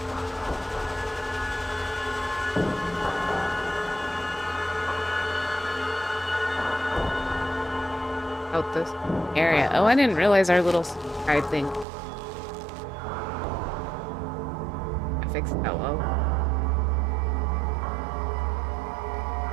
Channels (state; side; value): drops out; left; at 11.9 s